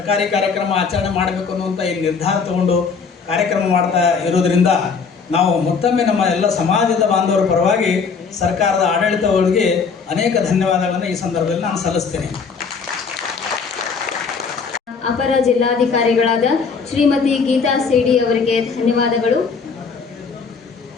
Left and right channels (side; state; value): right; quieter; 5.4 dB